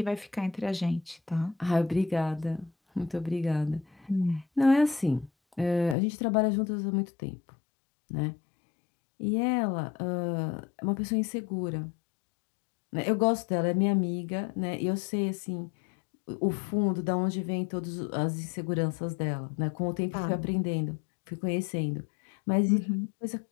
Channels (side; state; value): right; drops out; at 6.0 s